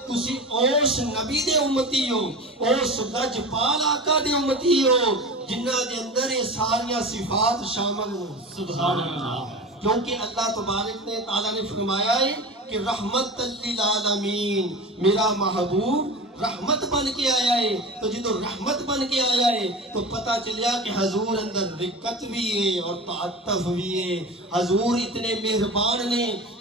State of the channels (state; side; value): normal; both; correlation 0.31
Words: تسی اوس نبی دے امتی ہو, اوس لجپال آقا دے امتی ہو جنہ دے اندر یہ ساریاں صفات شامل ہوں. سبحان اللہ. کیونکہ اللہ تبارک نے تعالیٰ نے فرمایا ہے کہ رحمت للعالمین, میرا محبوب رحمت بن کے آیا ہے. تو جدو رحمت بن کے آیا ہے تو پتہ چلیا کہ حضور اندر رقت بھی ہے اور تعطف بھی ہے. حضور اتنے مہربان نے